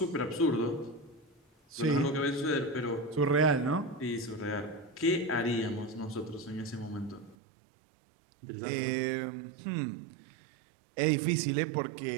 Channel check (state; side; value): drops out; left; at 7.4 s